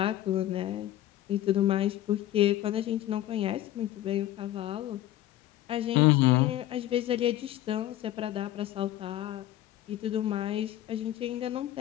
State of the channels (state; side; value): quieter; right; 13.7 dB